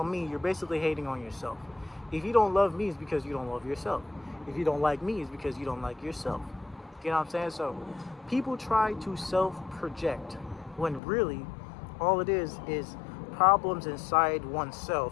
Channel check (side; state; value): right; drops out; at 11.0 s